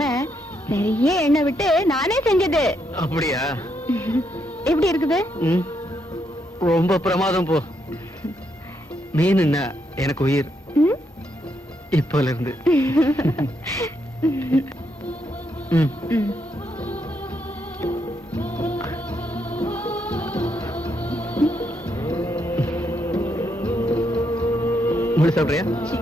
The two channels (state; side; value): normal; both; correlation 0.78